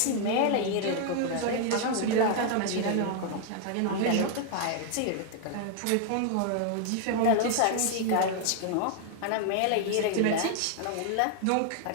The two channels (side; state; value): both; different; correlation 0.00